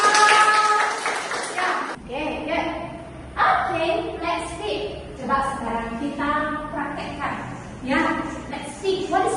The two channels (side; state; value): both; identical; correlation 1.00